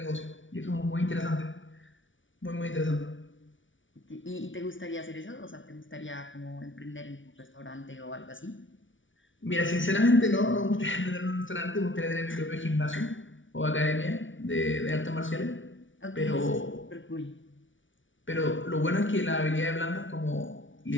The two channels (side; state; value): right; late; 0.56 ms